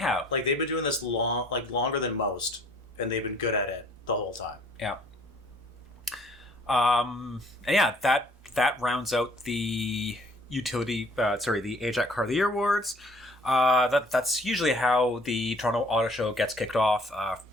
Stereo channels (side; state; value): both; normal; correlation 0.57